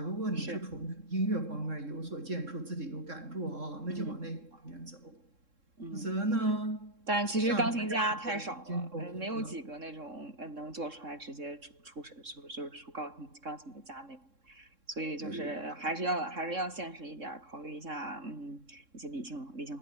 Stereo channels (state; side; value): late; left; 3.7 ms